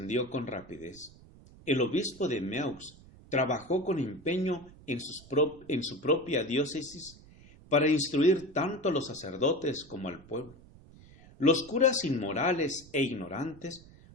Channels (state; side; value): noise; right; rumble, 22 dB below the sound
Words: con rapidez. El obispo de Meaux trabajó con empeño en su propia diócesis para instruir tanto a los sacerdotes como al pueblo. Los curas inmorales e ignorantes